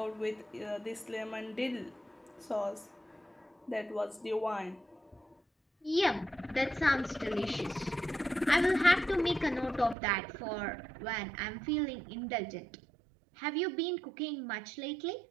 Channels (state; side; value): drops out; left; at 10.0 s